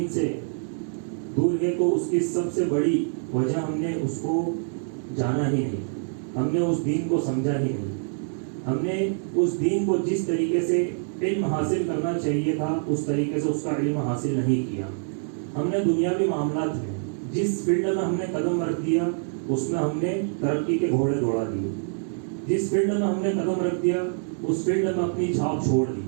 سے دور ہے، تو اس کی سب سے بڑی وجہ ہم نے اس کو جانا ہی نہیں، ہم نے اس دین کو سمجھا ہی نہیں. ہم نے اس دین کو جس طریقے سے علم حاصل کرنا چاہیے تھا اس طریقے سے اس کا علم حاصل نہیں کیا. ہم نے دنیاوی معاملات میں جس فیلڈ میں ہم نے قدم رکھ دیا اس میں ہم نے ترقی کے گھوڑے دوڑا دیے. جس فیلڈ میں ہم نے قدم رکھ دیا اس فیلڈ میں اپنی چھاپ چھوڑ دی.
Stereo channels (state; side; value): silent; left; digital silence